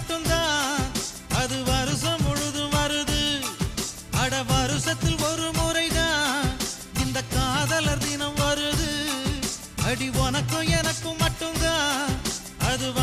அது வருஷம் முழுதும் வருது. அட வருஷத்தில் ஒரு முறைதான் இந்த காதலர் தினம் வருது. அடி உனக்கும் எனக்கும் மட்டும்தான் அது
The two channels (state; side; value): identical; both; correlation 1.00